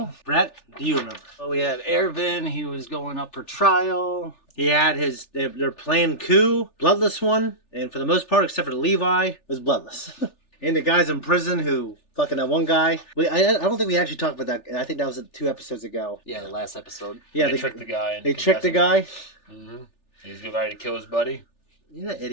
Brett, do you remember? Well, we had Ervin. He was going up for trial. He had their planned coup, bloodless one, and for the most part, except for Levi, it was bloodless. And the guys in prison who fucking that one guy. I don't think we actually talked about that. I think that was 2 episodes ago. Yeah, the last episode. Yeah, they tricked the guy. They tricked the guy. Mm-hmm. He's ready to kill his buddy. You're that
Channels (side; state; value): right; late; 3.4 ms